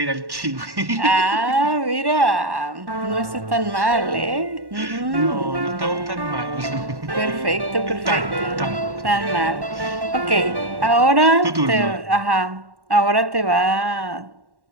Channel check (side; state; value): left; late; 1.1 ms